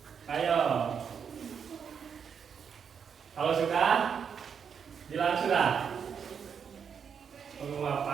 Ayo. Kalau sudah, bilang sudah.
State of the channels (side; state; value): left; quieter; 7.0 dB